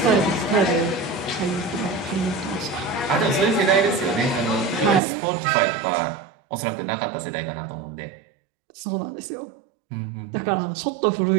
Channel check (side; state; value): left; drops out; at 5.0 s